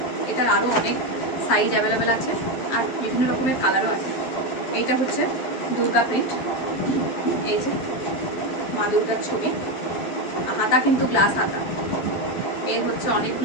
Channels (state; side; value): late; right; 11 ms